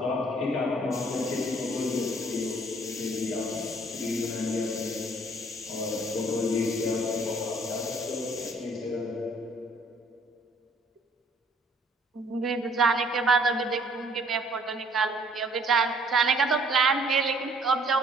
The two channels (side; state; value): both; normal; correlation 0.60